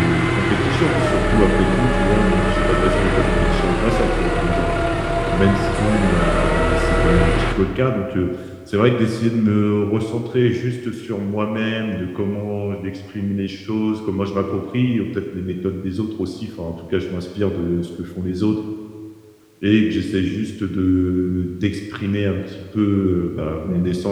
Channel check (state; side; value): identical; both; correlation 1.00